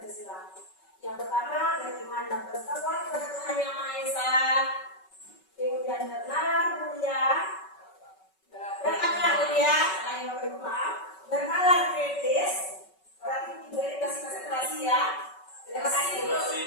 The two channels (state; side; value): late; right; 5.3 ms